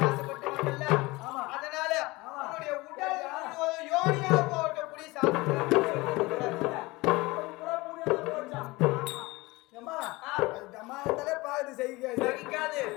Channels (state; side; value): quieter; right; 22.1 dB